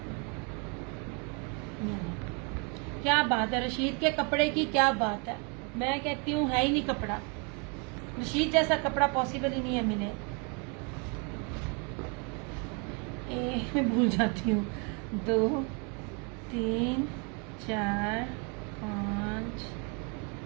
क्या बात है रशीद के कपड़े की, क्या बात है। मैं कहती हूँ है ही नहीं कपड़ा, रशीद जैसा कपड़ा पॉसिबल ही नहीं है मिले। मैं भूल जाती हूँ। 2 3 4 5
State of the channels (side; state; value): left; quieter; 34.9 dB